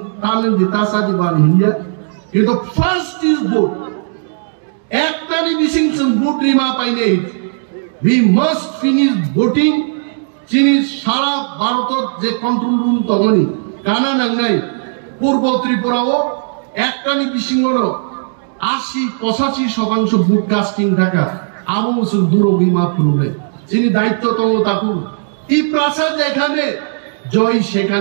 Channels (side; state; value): left; silent; digital silence